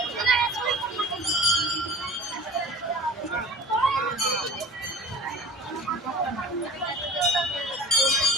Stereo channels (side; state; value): both; normal; correlation 0.38